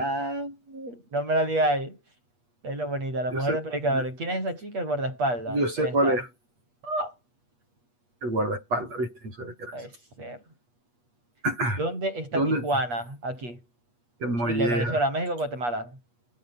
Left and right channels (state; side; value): late; left; 8.3 ms